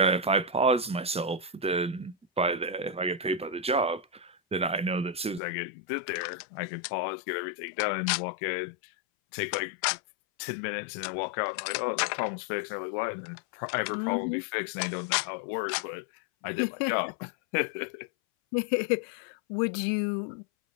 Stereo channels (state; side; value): drops out; right; at 5.4 s